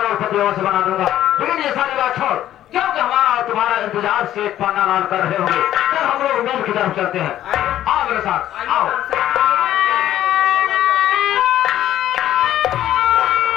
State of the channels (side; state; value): right; quieter; 12.4 dB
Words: से बना दूंगा। लेकिन ये सारी बात छोड़, क्योंकि हमारा और तुम्हारा इंतजार सेठ पन्नालाल कर रहे होंगे, तो हम लोग मेल की तरफ चलते हैं। आओ मेरे साथ, आओ।